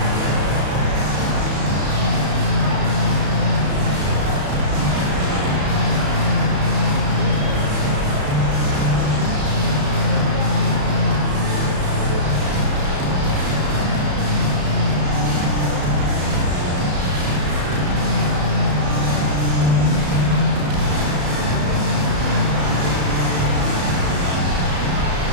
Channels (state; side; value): late; left; 34 ms